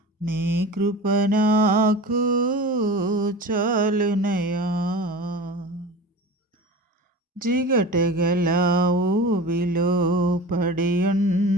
నీ కృప నాకు చాలునయ్యా. జిగటగల ఊబిలో పడి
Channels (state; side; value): normal; both; correlation 0.34